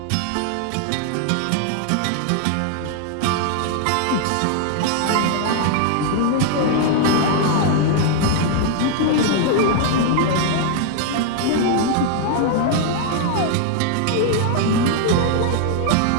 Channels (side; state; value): both; different; correlation 0.00